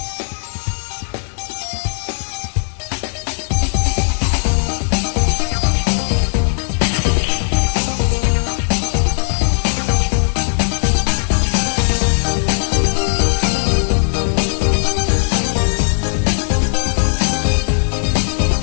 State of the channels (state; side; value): silent; right; digital silence